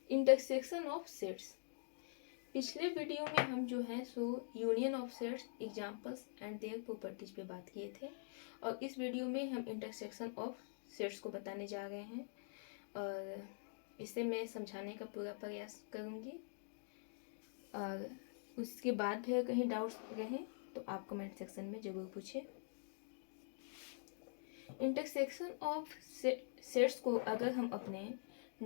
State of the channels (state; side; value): silent; right; digital silence